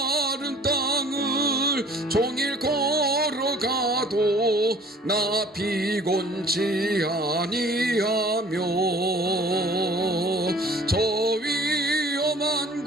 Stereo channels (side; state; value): both; normal; correlation 0.50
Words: 땅을 종일 걸어가도 나 피곤치 아니하며 저 위험한